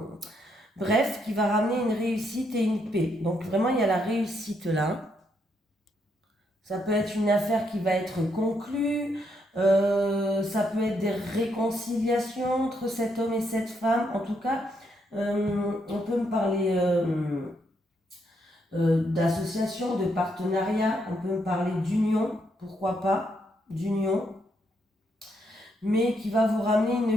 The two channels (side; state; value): both; normal; correlation 0.76